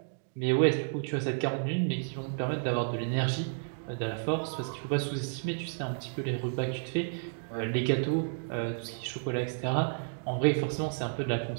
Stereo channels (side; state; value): left; silent; digital silence